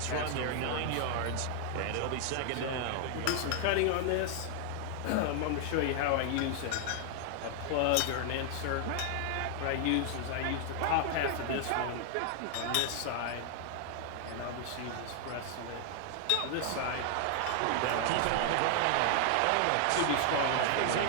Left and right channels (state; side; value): different; both; correlation 0.00